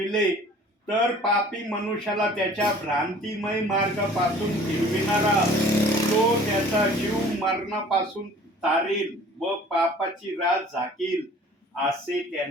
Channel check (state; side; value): normal; both; correlation 0.50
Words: तर पापी मनुष्याला त्याच्या भ्रांतिमय मार्गापासून फिरविणारा तो त्याचा जीव मरणापासून तारील व पापाची रास झाकील असे